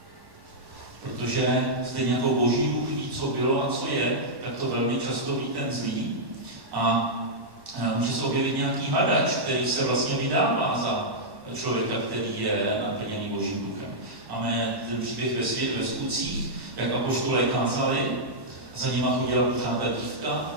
Protože stejně jako Boží duch ví, co bylo a co je, tak to velmi často ví ten zlý. A může se objevit nějaký hadač, který se vlastně vydává za člověka, který je naplněný Božím duchem. Máme ten příběh ve Skutcích, jak apoštolé kázali, za nima chodila pořád ta dívka a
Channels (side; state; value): left; late; 1.1 ms